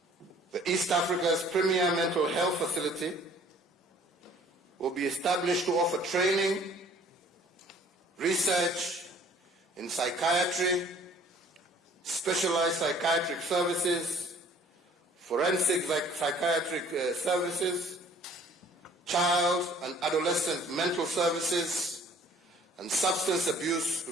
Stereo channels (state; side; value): normal; both; correlation 0.54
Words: The East Africa's premier mental health facility will be established to offer training, research in psychiatry, specialized psychiatric services, forensic psychiatric services, child and adolescent mental services, and substance abuse